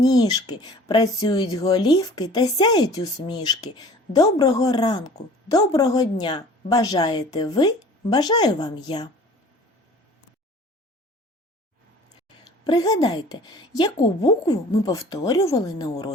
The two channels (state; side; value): normal; both; correlation 0.47